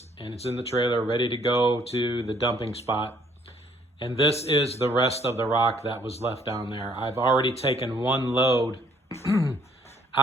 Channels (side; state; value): both; normal; correlation 0.63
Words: and it's in the trailer ready to go to the dumping spot. And this is the rest of the rock that was left down there. I've already taken one load